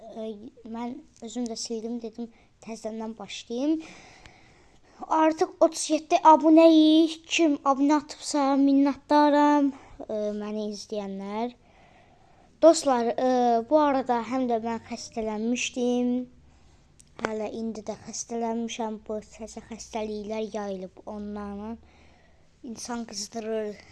mən özüm də sildim, dedim təzədən başlayayım. Artıq 37 abunəyik. Kim abunə atıbsa minnətdaram məni izləyənlər. Dostlar, bu arada həm də mən xəstələnmişdim. Hələ indi də xəstələnmişəm. Bu təzə xəstəliklər yayılıb onlarla. İnsan qızdırır,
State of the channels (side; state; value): both; identical; correlation 1.00